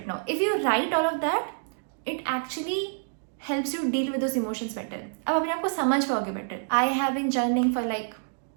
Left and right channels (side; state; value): left; silent; digital silence